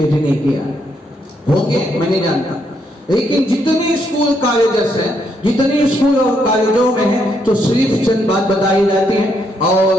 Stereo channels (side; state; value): both; normal; correlation 0.76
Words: ڈی نہیں کیا. ہوں گے میں نہیں جانتا، لیکن جتنے اسکول کالجز ہیں، جتنے اسکول اور کالجوں میں ہیں، تو صرف چند بات بتائی جاتی ہیں.